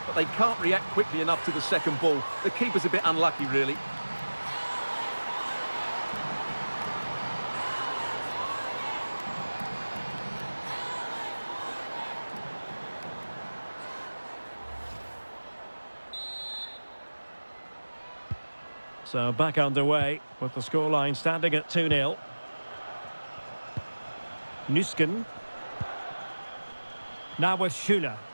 but they can't react quickly enough to the second ball. The keeper's a bit unlucky, really. So back underway with the scoreline standing at 2-0. Nüsken. Now with Schuler.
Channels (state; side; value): inverted; both; correlation -1.00